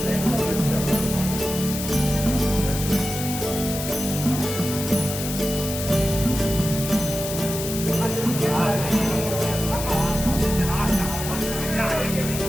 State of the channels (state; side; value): noise; left; hiss, 6 dB below the sound